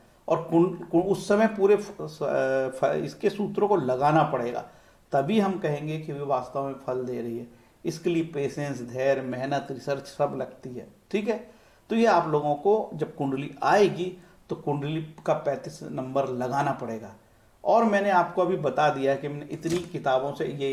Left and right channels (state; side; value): identical; both; correlation 1.00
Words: और उस समय पूरे इसके सूत्रों को लगाना पड़ेगा, तभी हम कहेंगे कि वे वास्तव में फल दे रही है। इसके लिए पेशेंस, धैर्य, मेहनत, रिसर्च सब लगती है। ठीक है, तो ये आप लोगों को जब कुंडली आएगी तो कुंडली का 35 नंबर लगाना पड़ेगा। और मैंने आपको अभी बता दिया कि मैंने इतनी किताबों से